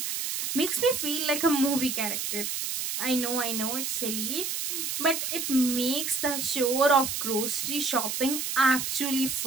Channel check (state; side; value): noise; right; hiss, 2 dB below the sound